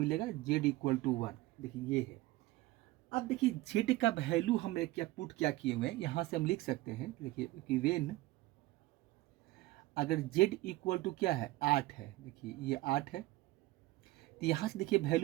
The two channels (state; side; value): quieter; left; 18.4 dB